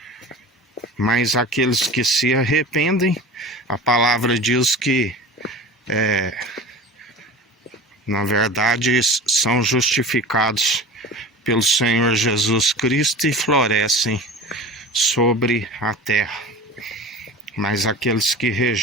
Mas aqueles que se arrependem, a palavra diz que na verdade são justificados pelo Senhor Jesus Cristo e florescem sobre a terra. Mas aqueles que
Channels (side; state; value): both; normal; correlation 0.35